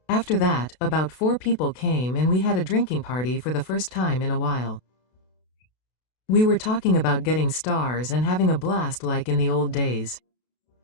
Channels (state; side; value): late; right; 32 ms